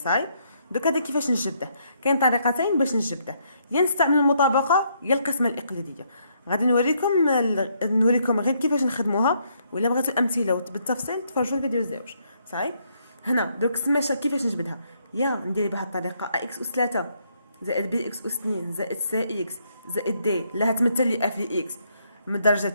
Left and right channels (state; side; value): inverted; both; correlation -0.72